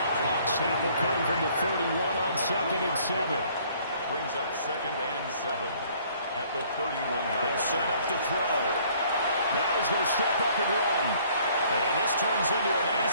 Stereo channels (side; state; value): both; inverted; correlation -0.59